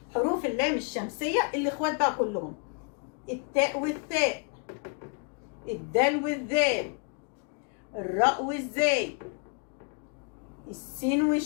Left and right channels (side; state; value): right; quieter; 39.2 dB